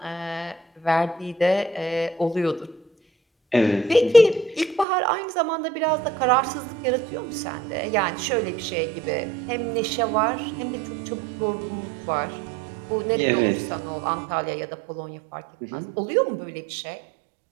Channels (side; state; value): left; drops out; at 4.9 s